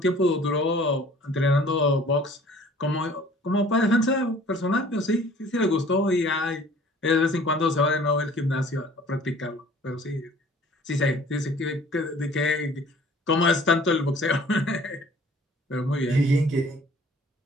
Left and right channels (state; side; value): normal; both; correlation 0.51